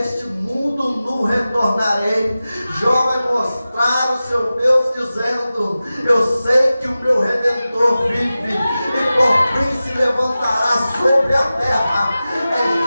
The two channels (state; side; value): inverted; both; correlation -0.95